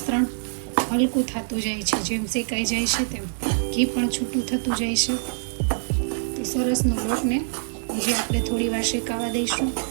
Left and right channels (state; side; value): silent; left; digital silence